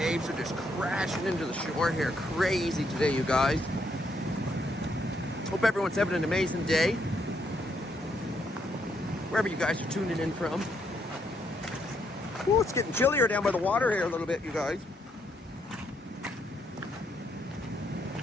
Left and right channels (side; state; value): both; normal; correlation 0.75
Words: are just crashing into the shore here. Crazy today, you guys. Hope everyone's having an amazing day. Wherever you guys are tuning in from. Ooh, it's getting chillier down by the water here a little bit, you guys.